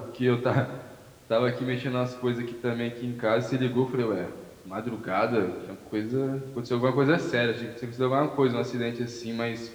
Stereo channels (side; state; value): both; identical; correlation 1.00